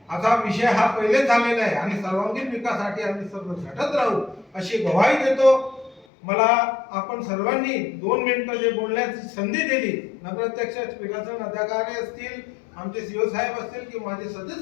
असा विषय हा पहिले झालेला आहे आणि सर्वांगीण विकासासाठी आम्ही सर्व झटत राहू, अशी ग्वाही देतो. मला आपण सर्वांनी 2 मिनिटं जे बोलण्याची संधी दिली, नगराध्यक्ष, विकासन अधिकारी असतील, आमचे सीओ साहेब असतील की माझे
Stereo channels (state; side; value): drops out; right; at 6.1 s